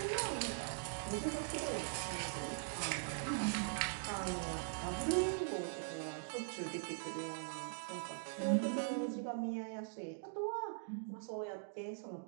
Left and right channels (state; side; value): silent; left; digital silence